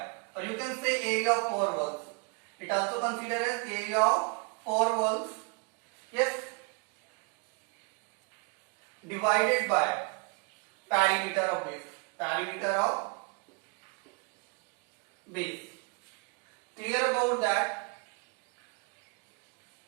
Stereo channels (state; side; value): quieter; left; 35.4 dB